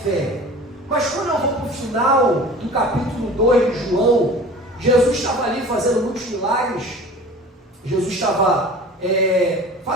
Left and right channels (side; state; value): both; normal; correlation 0.41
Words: fé. Mas quando eu vou para o final do capítulo 2 de João, Jesus estava ali fazendo muitos milagres, Jesus estava